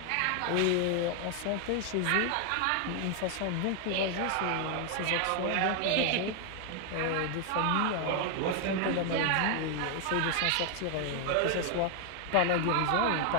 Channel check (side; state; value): both; different; correlation 0.00